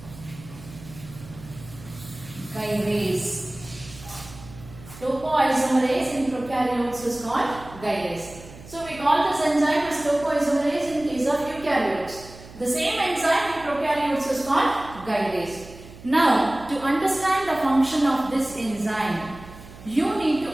gyrase. Topoisomerase in prokaryotes is called gyrase. So we call this enzyme as topoisomerase in case of eukaryotes. The same enzyme in prokaryotes is called gyrase. Now, to understand the function of this enzyme, you need to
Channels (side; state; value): right; noise; hum, 18 dB below the sound